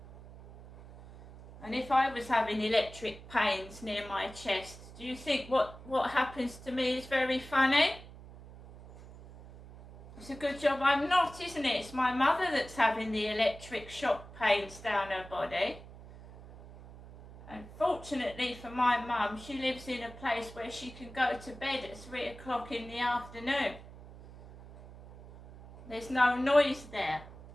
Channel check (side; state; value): right; noise; hum, 17 dB below the sound